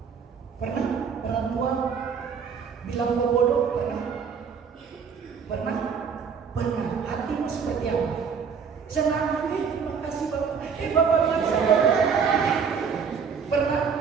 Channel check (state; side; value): quieter; left; 6.3 dB